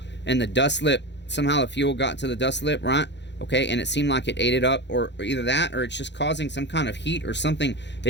and the dust lip, somehow the fuel got to the dust lip, right? Okay, and it seemed like it ate it up, or either that, or it's just causing some kind of heat or something.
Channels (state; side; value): late; right; 0.51 ms